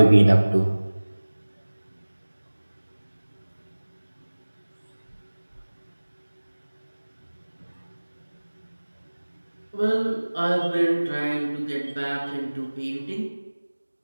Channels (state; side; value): inverted; both; correlation -1.00